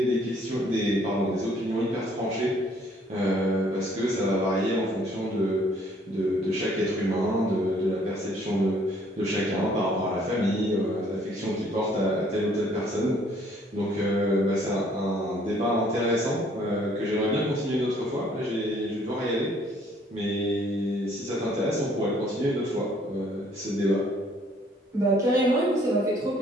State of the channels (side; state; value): both; normal; correlation 0.62